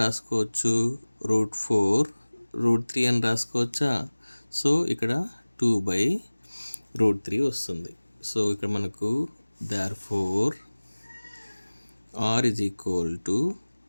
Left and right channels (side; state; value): both; inverted; correlation -1.00